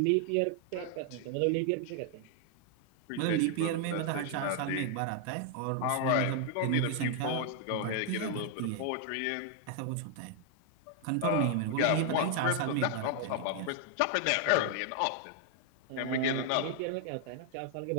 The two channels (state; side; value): different; both; correlation 0.00